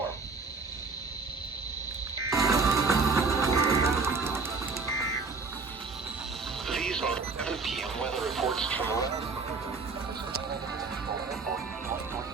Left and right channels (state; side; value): quieter; left; 4.3 dB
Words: These are 7 p.m. weather reports from around.